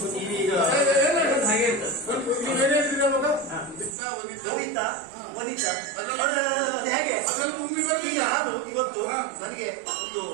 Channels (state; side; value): drops out; left; at 4.0 s